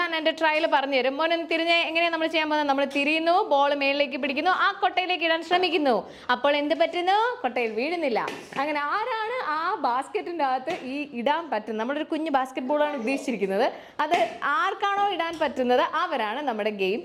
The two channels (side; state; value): both; identical; correlation 1.00